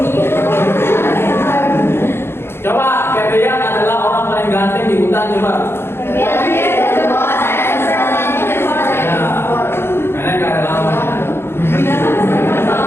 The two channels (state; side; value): late; right; 0.11 ms